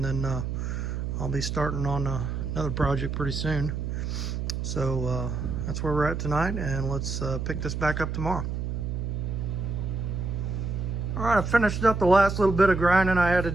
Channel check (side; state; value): right; noise; hum, 3 dB below the sound